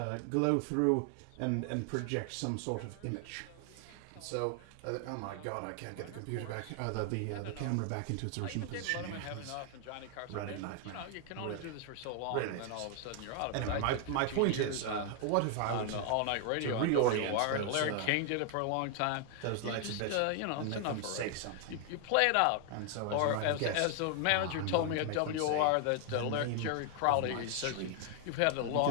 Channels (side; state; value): both; different; correlation 0.00